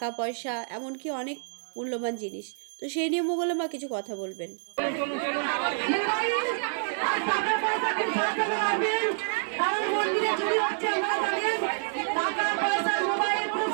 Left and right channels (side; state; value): left; silent; digital silence